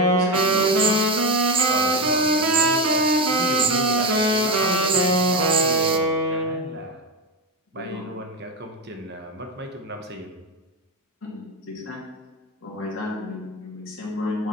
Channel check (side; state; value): both; normal; correlation 0.15